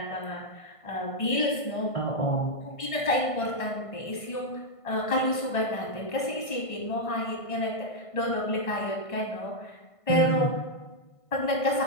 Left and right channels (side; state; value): right; late; 1.5 ms